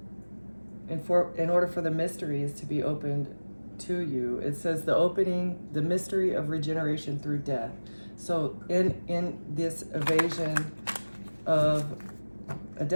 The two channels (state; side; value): inverted; both; correlation -1.00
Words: the mysteries to be opened to you. It says the opening, the mystery of regeneration through death. So in this evasion of a